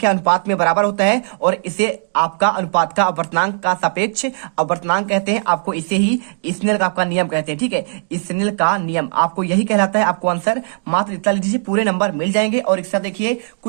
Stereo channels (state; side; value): silent; left; 67 dB below the other